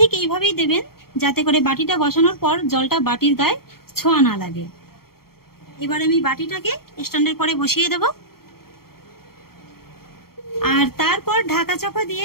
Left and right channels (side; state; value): right; late; 0.94 ms